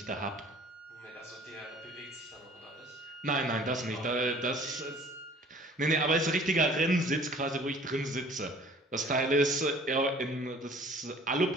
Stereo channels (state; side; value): normal; both; correlation 0.51